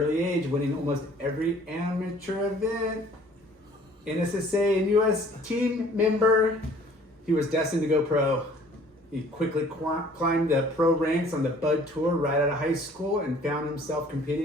age, winning almost every amateur event. NSSA and USA Team member. He was destined to go pro. He quickly climbed the pro ranks on the Bud Tour right out of high school and found himself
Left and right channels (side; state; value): both; normal; correlation 0.54